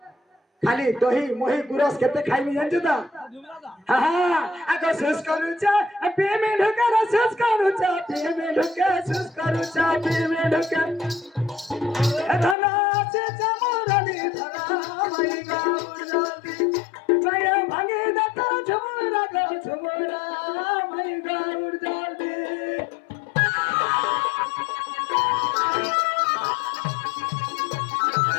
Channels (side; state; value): right; drops out; at 12.6 s